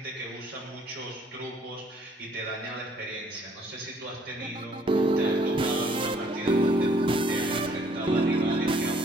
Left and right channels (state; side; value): normal; both; correlation 0.62